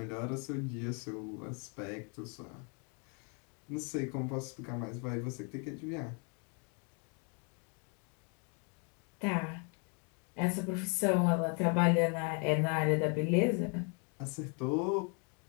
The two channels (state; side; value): quieter; right; 37.3 dB